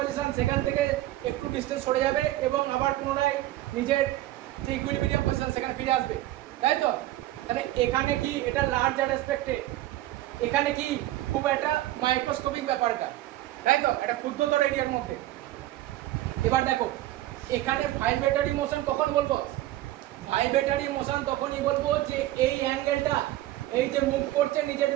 সেখান থেকে একটু ডিস্টেন্স সরে যাবে এবং আবার পুনরায় নিজের যে ইকুইলিব্রিয়াম পজিশন সেখানে ফিরে আসবে, তাই তো? তাহলে এখানে কি এটা লার্জার রেসপেক্টে, এখানে কি খুব একটা মাইক্রোস্কোপিক ব্যাপারটা, তাই তো? এটা ক্ষুদ্রতর এরিয়ার মধ্যে। এবার দেখো এখানে ভাইব্রেটরি মোশন কখন বলবো? ভাইব্রেটরি মোশন তখনই বলবো যে এই অ্যাঙ্গেলটা, এই যে মুভ করছে নিজের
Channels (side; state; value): left; quieter; 15.4 dB